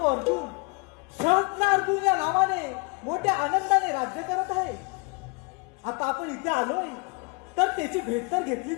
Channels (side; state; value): right; quieter; 30.5 dB